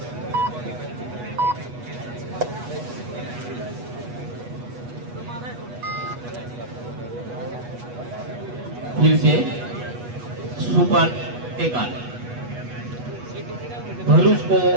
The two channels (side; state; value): left; late; 8.2 ms